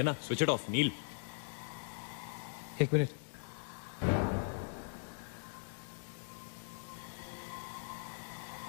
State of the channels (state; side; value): silent; right; digital silence